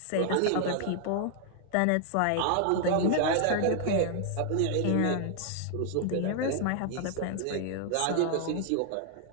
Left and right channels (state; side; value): different; both; correlation 0.00